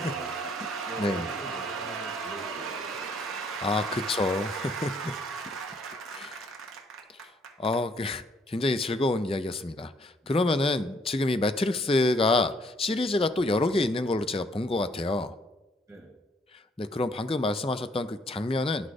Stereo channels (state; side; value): normal; both; correlation 0.65